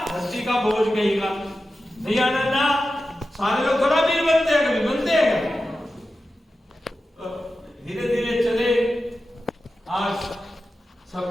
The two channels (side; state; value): both; normal; correlation 0.92